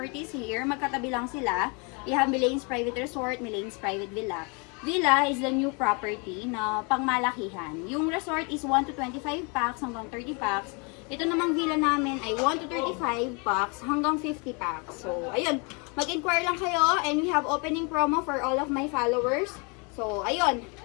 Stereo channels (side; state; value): right; quieter; 32.7 dB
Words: here. Magkatabi lang sila. We have Milane's Private Resort, Milane's Private Villa. Villa is the new property na pangmalakihan. Yung resort is 1 to 25 packs hanggang 30 packs. Ito namang villa namin ay 1 to 35 packs hanggang 50 packs. So, ayun. Mag-inquire lang kayo and we have opening promo for all of my followers. So, ayun.